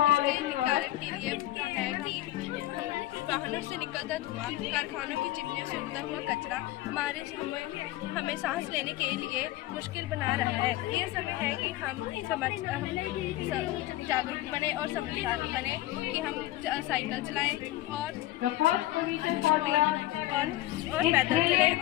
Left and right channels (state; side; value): quieter; right; 16.1 dB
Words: कारण के लिए है कि वाहनों से निकलता धुआं, कारखानों की चिमनियों से उड़ता हुआ कचरा हमें सांस लेने के लिए मुश्किल बना रहा है। ये समय है कि हम जागरूक बने और समझदार बने कि हम साइकिल चलाएं और पैदल चलें और अधिक से